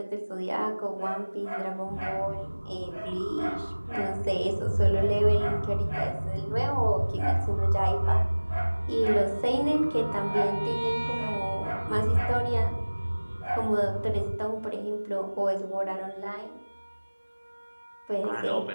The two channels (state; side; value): inverted; both; correlation -1.00